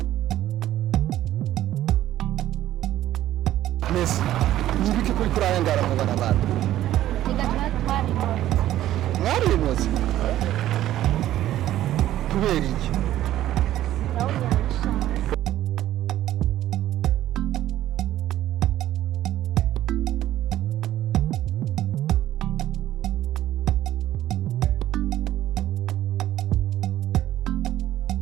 Messi. Nibiki kuri kurayangara mu barabara. Mwarimuzi kubera iki?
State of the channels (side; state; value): left; quieter; 13.3 dB